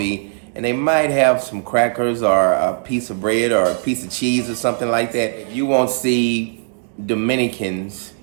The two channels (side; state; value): left; silent; digital silence